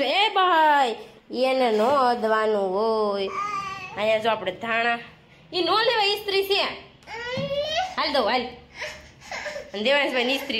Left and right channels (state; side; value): identical; both; correlation 1.00